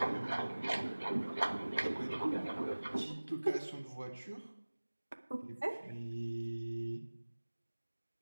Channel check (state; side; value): inverted; both; correlation -1.00